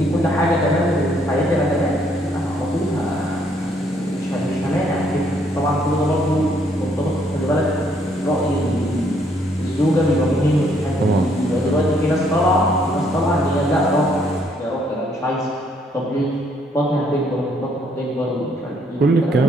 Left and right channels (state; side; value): normal; both; correlation 0.68